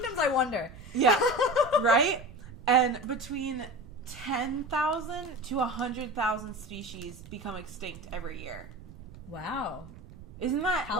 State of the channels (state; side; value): noise; right; rumble, 17 dB below the sound